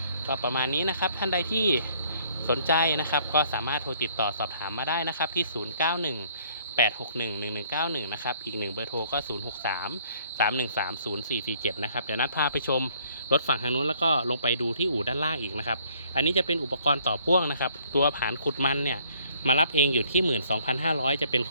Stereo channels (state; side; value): inverted; both; correlation -0.62